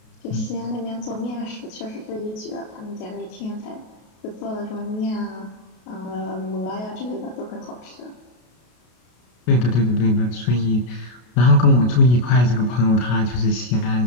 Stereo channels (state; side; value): late; right; 33 ms